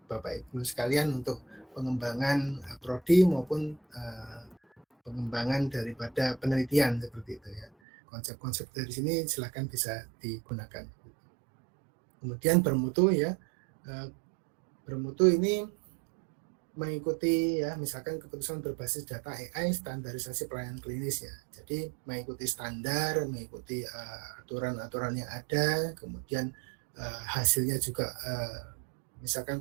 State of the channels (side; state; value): left; drops out; at 7.7 s